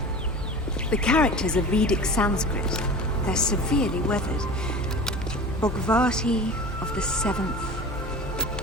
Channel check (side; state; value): both; normal; correlation 0.36